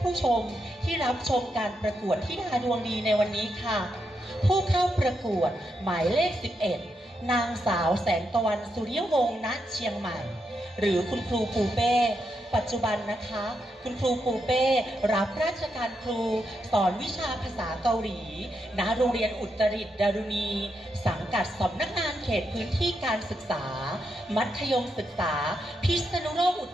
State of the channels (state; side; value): normal; both; correlation 0.83